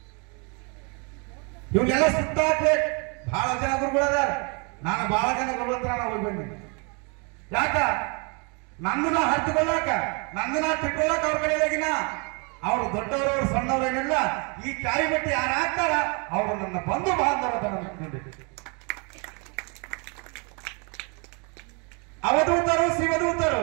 ಇವನ್ನೆಲ್ಲ ಸುಟ್ಟಾಕ್ಬೇಕು. ಬಹಳ ಜನ ಗುರುಗಳದಾರ. ನಾನು ಬಹಳ ಜನ ಗುರುಗಳ ಹತ್ರ ನಾವು ಹೋಗಿ ಬಂದಿನಿ. ಯಾಕ? ನಂದನ್ನ ಹರಿದುಕೊಳ್ಳಾಕ, ನಂದನ್ನ ತಿಳ್ಕೊಳ್ಳಾಕ ಅವ್ರ ಕಡೆಯಾಗಿನ ಅವರು ದೊಡ್ಡವರು ಸಣ್ಣವರೇನಿಲ್ಲ. ಈ ಕಾಯಿ ಬಟ್ಟಿ ಯಾರು ಹಾಕ್ತಾರ ಅವರು ನನ್ನ ಬಂಧು ಬಾಂಧವರ ನೋಡಿ. ಅವಧೂತರು ಶಿವದೂತರು.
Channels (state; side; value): quieter; left; 33.7 dB